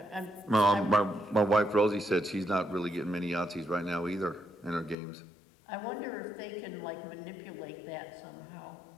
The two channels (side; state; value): right; drops out; at 5.0 s